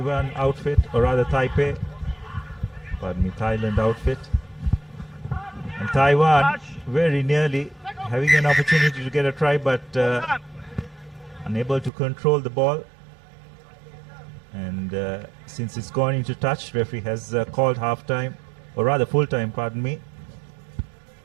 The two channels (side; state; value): left; drops out; at 11.9 s